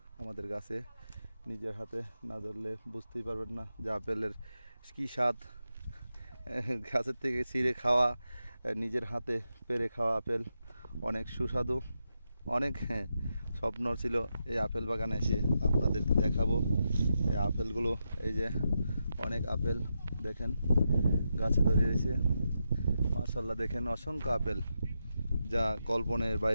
আমাদের গাছে। নিজের হাতে না ধরলে বুঝতেই পারবেন না যে আপেলের কী স্বাদ। গাছের থেকে ছিঁড়ে খাওয়া, নিজের হাতে পেড়ে খাওয়া আপেল অনেক সুস্বাদু। অনেক স্বপ্ন ছিল এই আপেল বাগানে এসে আপনাদেরকে দেখাবো এই আপেলগুলো। এই যে অনেক আপেল দেখেন গাছে ধরে রয়েছে, মাশাআল্লাহ। দেখেন অসংখ্য আপেল, যা কল্পনের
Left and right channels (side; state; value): both; inverted; correlation -0.86